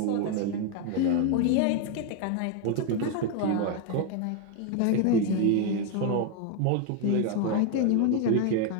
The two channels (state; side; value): different; both; correlation 0.01